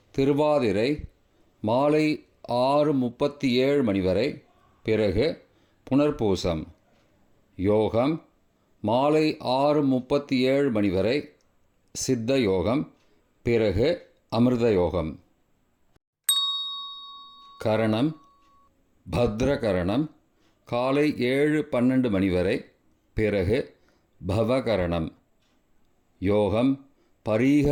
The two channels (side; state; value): both; identical; correlation 1.00